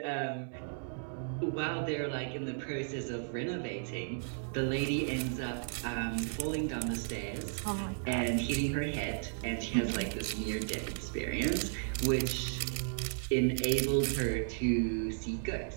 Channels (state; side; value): silent; left; digital silence